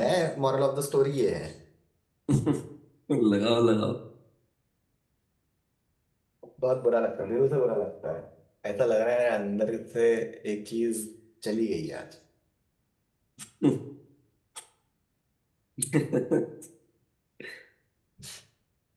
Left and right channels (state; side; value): identical; both; correlation 1.00